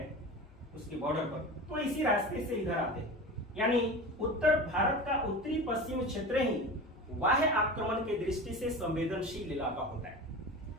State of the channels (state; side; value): normal; both; correlation 0.31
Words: उसके बॉर्डर पर, तो इसी रास्ते से इधर आते हैं। यानी उत्तर भारत का उत्तरी पश्चिम क्षेत्र ही बाह्य आक्रमण के दृष्टि से संवेदनशील इलाका होता है।